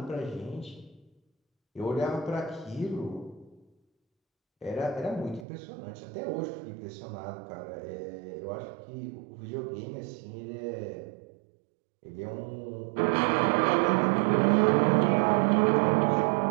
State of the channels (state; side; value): drops out; left; at 5.5 s